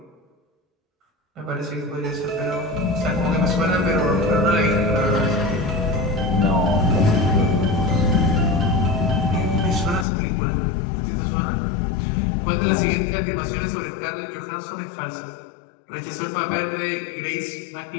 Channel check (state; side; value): drops out; right; at 10.1 s